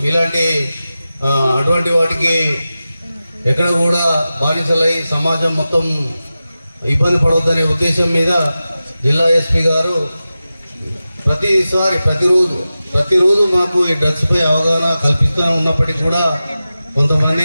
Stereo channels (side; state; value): both; inverted; correlation -0.94